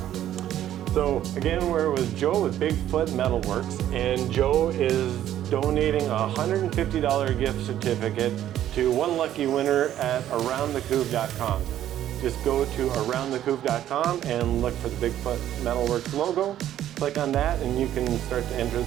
So again, we're with Joe with BigFoot MetalWorks, and Joe is donating a $150 gift certificate to one lucky winner at aroundthecouve.com. Just go to aroundthecouve.com and look for the BigFoot MetalWorks logo. Click on that and you can start to enter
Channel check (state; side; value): quieter; left; 11.8 dB